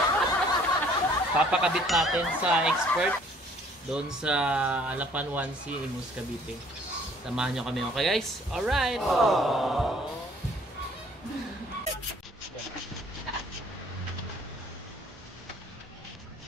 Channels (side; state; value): both; normal; correlation 0.57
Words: Papakabit natin sa expert doon sa Alapan 1C Imus Cavite. Samahan nyo kami, okay guys? Alright!